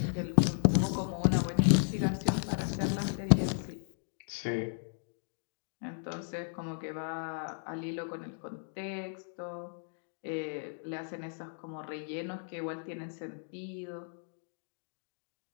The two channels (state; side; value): silent; right; digital silence